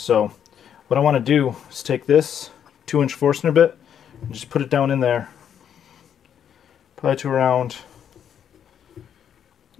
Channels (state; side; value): quieter; right; 8.9 dB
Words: what I want to do is take this 2-inch Forstner bit and just put it down in there. Probably to around,